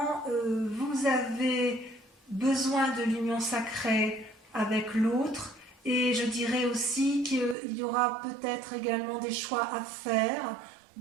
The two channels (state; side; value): drops out; left; at 7.6 s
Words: vous avez besoin de l'union sacrée avec l'autre. Et je dirais aussi qu'il y aura peut-être également des choix à faire